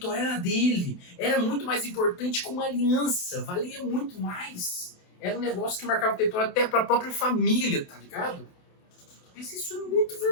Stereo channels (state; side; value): late; right; 28 ms